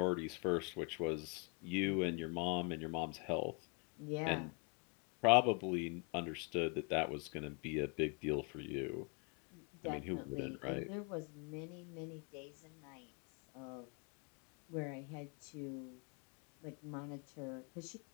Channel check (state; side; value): quieter; right; 33.0 dB